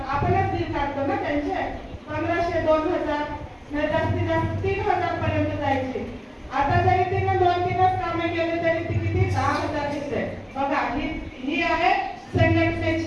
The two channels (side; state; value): both; identical; correlation 1.00